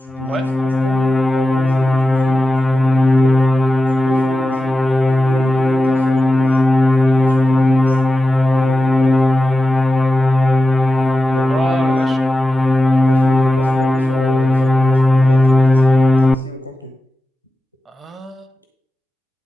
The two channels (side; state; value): both; normal; correlation 0.93